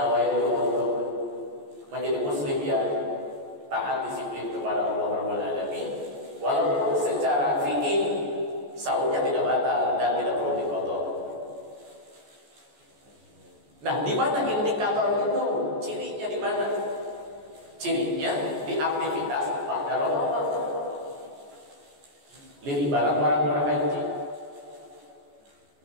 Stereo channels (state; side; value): late; left; 14 ms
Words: untuk menjadi muslim yang taat disiplin kepada Allah Rabbul Alamin. Walaupun secara fikih saumnya tidak batal dan tidak perlu diqadha. Nah, di mana indikator itu? Cirinya di mana? Cirinya di aktivitas pada Ramadan. Lihat ibarat orang berhaji.